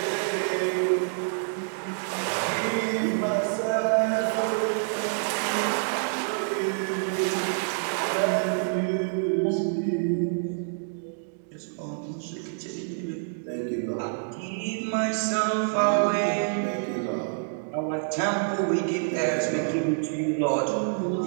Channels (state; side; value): silent; left; digital silence